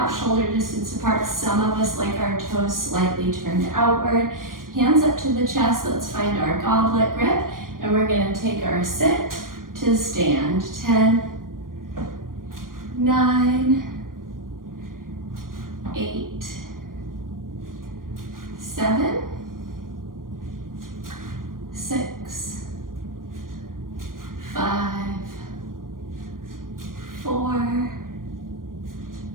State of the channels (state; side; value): late; left; 0.91 ms